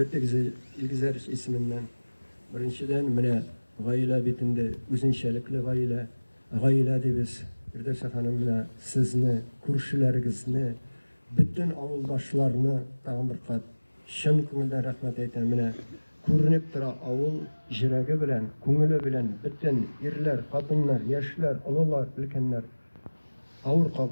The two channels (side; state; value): both; inverted; correlation -1.00